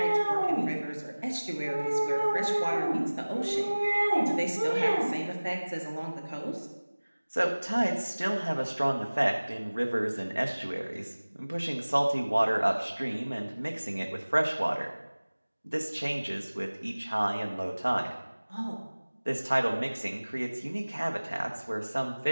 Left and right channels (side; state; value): both; inverted; correlation -1.00